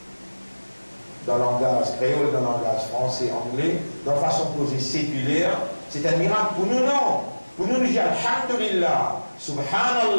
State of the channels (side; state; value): both; inverted; correlation -1.00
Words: Dans le langage créole, dans le langage français, anglais, dans façon posée séculaire, c'est un miracle pour nous, non. Pour nous, nous disons Alhamdulillah,